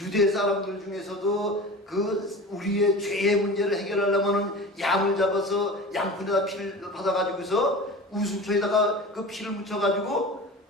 사람들 중에서도 그 우리의 죄의 문제를 해결하려면은 양을 잡아서 양푼에다 피를 받아가지고서 우순초에다가 그 피를 묻혀가지고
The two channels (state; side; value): normal; both; correlation 0.34